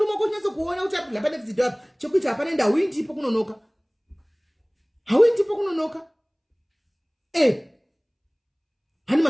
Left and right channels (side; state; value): both; identical; correlation 1.00